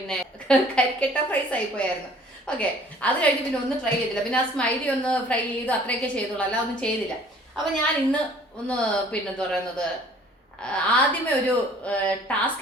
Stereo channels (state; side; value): normal; both; correlation 0.54